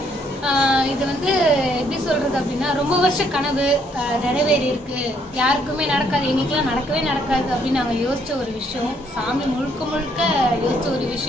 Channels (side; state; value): both; normal; correlation 0.69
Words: இது வந்து எப்படி சொல்கிறது அப்படின்னா, ரொம்ப வருஷ கனவு நிறைவேறி இருக்கு. யாருக்குமே நடக்காது, எங்களுக்கெல்லாம் நடக்கவே நடக்காது அப்படின்னு நாங்கள் யோசித்த ஒரு விஷயம், சாமி முழுக்க முழுக்க யோசித்த ஒரு